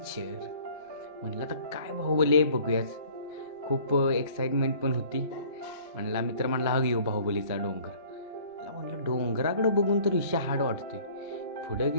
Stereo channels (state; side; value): inverted; both; correlation -0.52